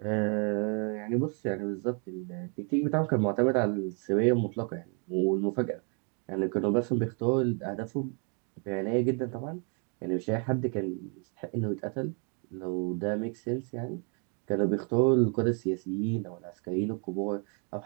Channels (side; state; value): left; quieter; 38.4 dB